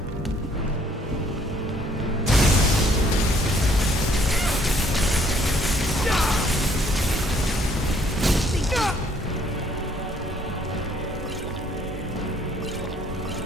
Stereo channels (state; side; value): normal; both; correlation 0.63